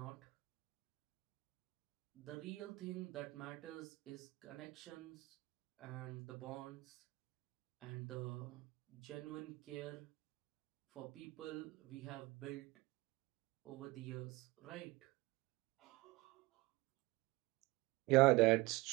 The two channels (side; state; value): left; quieter; 21.4 dB